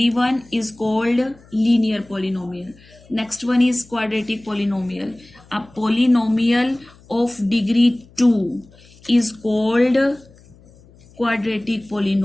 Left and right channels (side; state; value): left; noise; hum, 26 dB below the sound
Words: 1 is called linear polynomial. Next one is quadratic polynomial. A polynomial of degree 2 is called quadratic